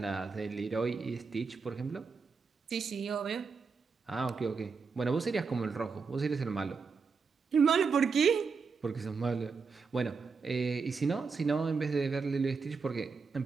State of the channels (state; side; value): quieter; left; 5.0 dB